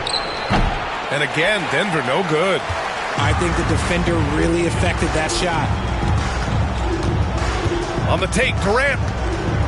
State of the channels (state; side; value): identical; both; correlation 1.00